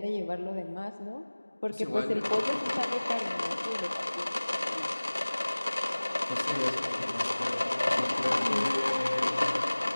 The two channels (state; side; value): inverted; both; correlation -1.00